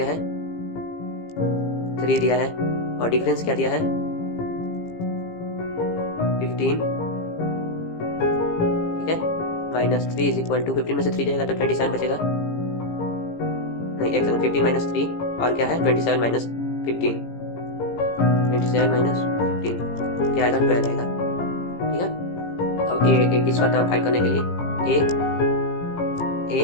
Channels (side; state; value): right; late; 18 ms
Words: है 3 दिया है और डिफरेंस क्या दिया है 15, ठीक है, माइनस 3 इज इक्वल टू 15 में से 3 जाएगा तो 27 बचेगा, नहीं एक सेकंड, 15 माइनस 3 और क्या है 27 माइनस 15, 27 माइनस 15 क्या आएगा 12 आएगा, ठीक है। अब A इसका टर्म फाइंड करने के लिए ए